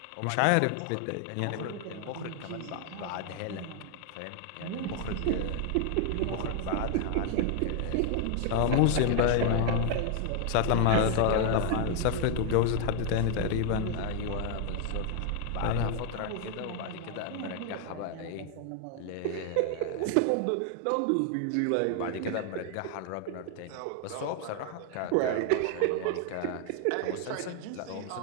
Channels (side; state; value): both; different; correlation 0.00